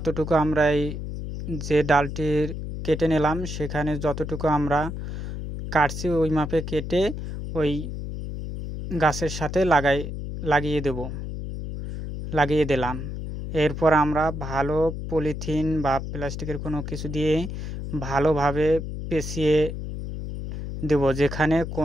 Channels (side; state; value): left; noise; hum, 6 dB below the sound